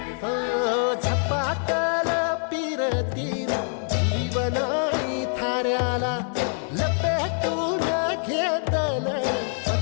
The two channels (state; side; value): silent; right; digital silence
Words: झपाटल पीर तीर जीवनाई थाऱ्याला लपेटून घेतल